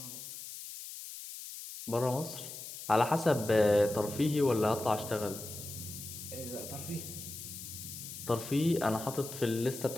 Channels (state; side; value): noise; left; hiss, 10 dB below the sound